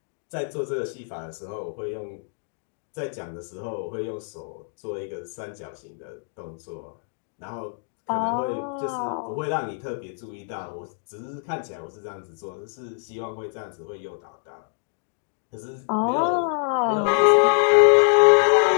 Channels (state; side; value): silent; right; 61 dB below the other